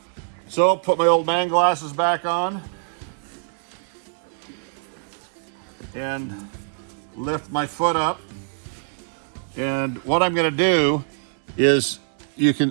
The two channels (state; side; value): silent; left; digital silence